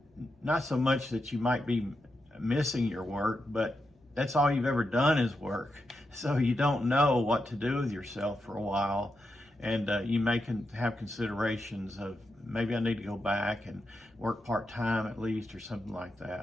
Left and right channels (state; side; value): normal; both; correlation 0.86